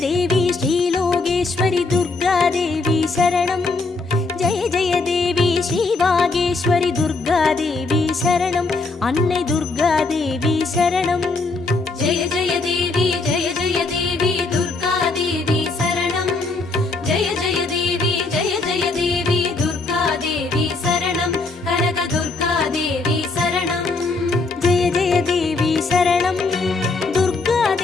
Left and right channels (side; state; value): right; quieter; 3.7 dB